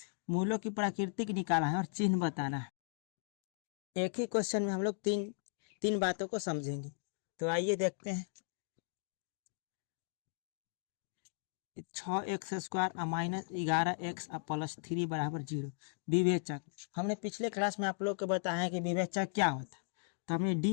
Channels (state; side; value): silent; right; digital silence